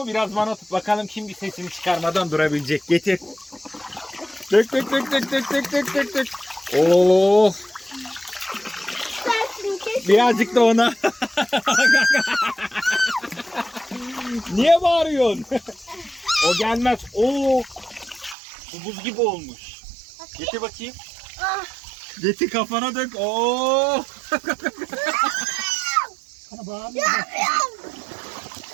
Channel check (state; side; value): drops out; left; at 18.4 s